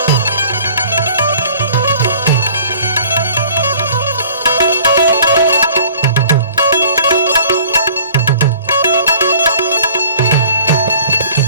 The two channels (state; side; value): inverted; both; correlation -0.49